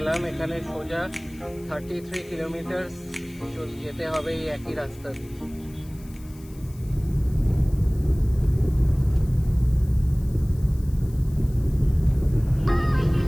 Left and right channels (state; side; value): noise; left; hiss, 24 dB below the sound